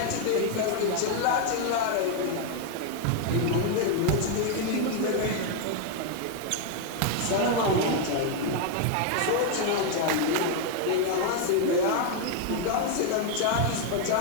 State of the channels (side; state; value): both; different; correlation 0.01